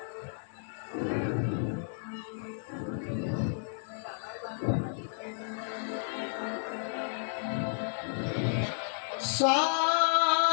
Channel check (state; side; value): silent; right; 56 dB below the other